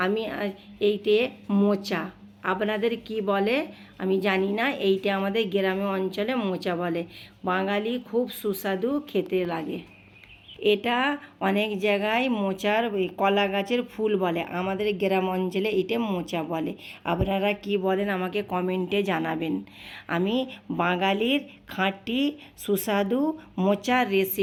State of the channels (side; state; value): both; identical; correlation 1.00